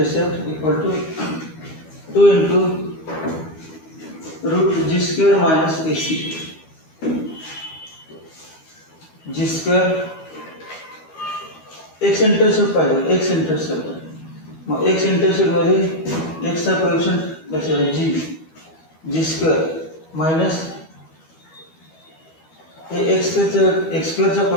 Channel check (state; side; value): late; right; 12 ms